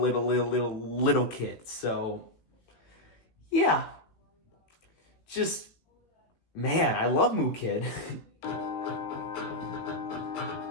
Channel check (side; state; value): right; late; 18 ms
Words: kid. So yeah, just. Man, I love Moo Kid.